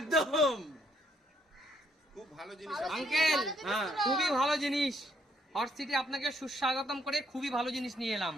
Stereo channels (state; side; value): normal; both; correlation 0.70